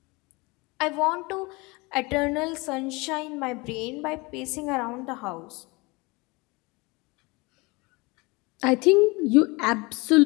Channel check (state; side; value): quieter; right; 25.5 dB